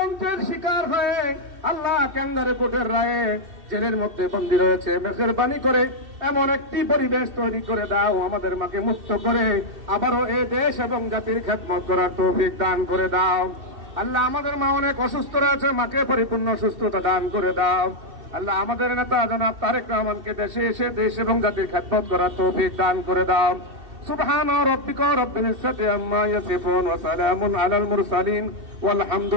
শিকার হয়ে আল্লাহ ক্যাঙ্গারে কোর্টের রায়ে জেলের মধ্যে বন্দী রয়েছে, মেহেরবানি করে এমন একটি পরিবেশ তৈরি করে দাও, আমাদের মাকে মুক্ত করে আবারও এ দেশ এবং জাতির খেদমত করার তৌফিক দান করে দাও। আল্লাহ আমাদের মা অনেক অসুস্থ রয়েছে, মাকে পরিপূর্ণ সুস্থতা দান করে দাও। আল্লাহ আমাদের নেতা জনাব তারেক রহমানকে দেশে এসে দেশ এবং জাতির খেদমত করার তৌফিক দান করে দাও। সুবহান রাব্বিকা রাব্বিল ইজ্জাতি আম্মা ইয়াসিফুন ওয়া সালামুন আলাল মুরসালিন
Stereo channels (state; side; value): late; left; 2.7 ms